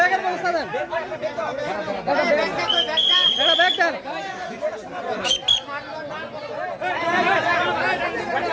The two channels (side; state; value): both; identical; correlation 1.00